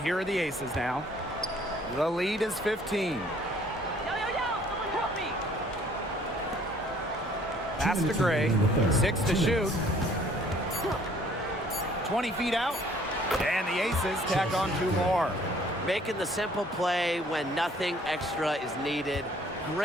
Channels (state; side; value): normal; both; correlation 0.58